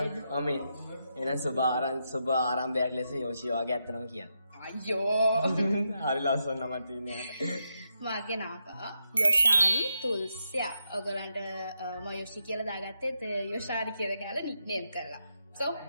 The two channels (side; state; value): both; inverted; correlation -0.83